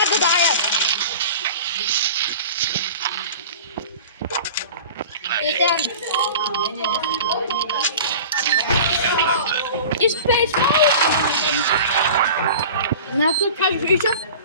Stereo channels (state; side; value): inverted; both; correlation -0.39